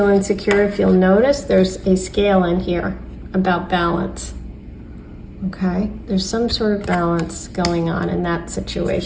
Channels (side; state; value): both; identical; correlation 1.00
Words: insecure, if you'll notice, there's a scale in here about balance. Okay, there's some sort of balance going on in that